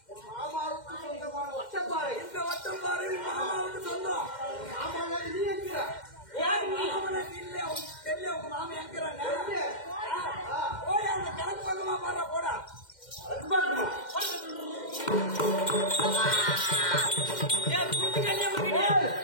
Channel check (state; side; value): late; right; 2.1 ms